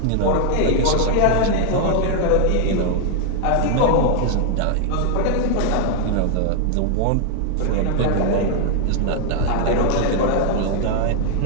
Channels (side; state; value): both; different; correlation 0.00